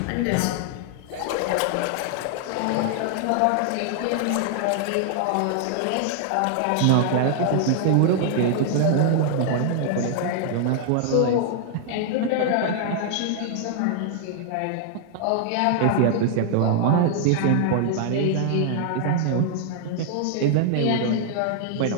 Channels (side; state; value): both; different; correlation 0.00